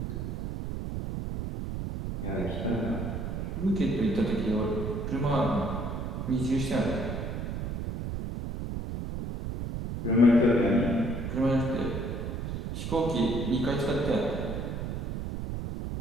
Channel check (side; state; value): right; noise; rumble, 4 dB below the sound